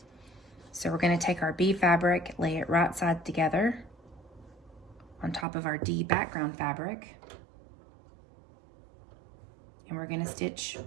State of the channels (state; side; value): drops out; left; at 5.5 s